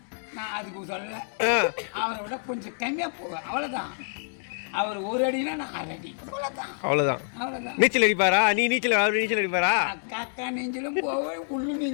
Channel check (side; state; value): right; silent; digital silence